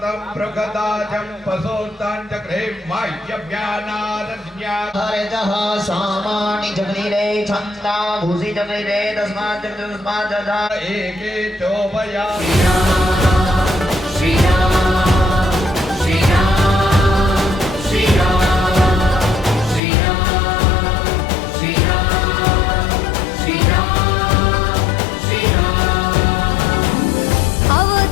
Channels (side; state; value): right; drops out; at 19.8 s